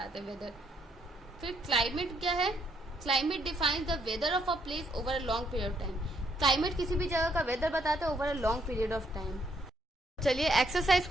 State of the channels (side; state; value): both; normal; correlation 0.72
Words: हैं वेदर। फिर क्लाइमेट क्या है, climate defines the weather of a place over a long period of time. Climate किसी भी जगह का वेदर बताता है over a long period of time. चलिए एक्सरसाइज